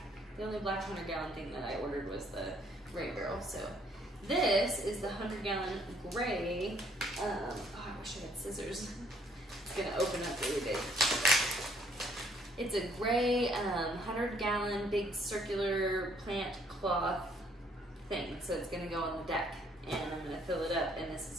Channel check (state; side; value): normal; both; correlation 0.65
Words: The only black 100-gallon thing that I ordered was the rain barrel, so. This is the 100-gallon gray. Oh, I wish I had scissors. It's gonna open up really big. It's a gray 100-gallon big circular plant cloth thing. So it's gonna go on the deck, and I'm gonna fill it up, and this